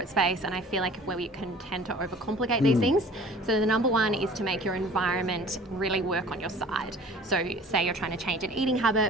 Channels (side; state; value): both; normal; correlation 0.47